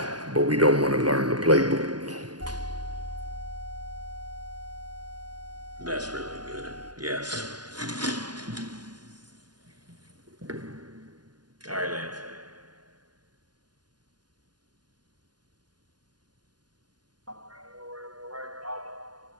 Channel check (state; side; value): late; left; 0.70 ms